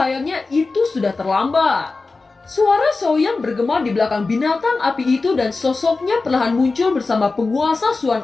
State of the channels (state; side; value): quieter; right; 3.8 dB